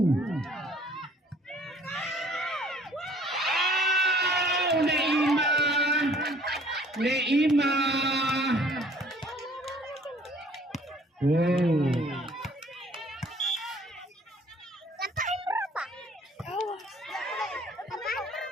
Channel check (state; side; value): normal; both; correlation 0.56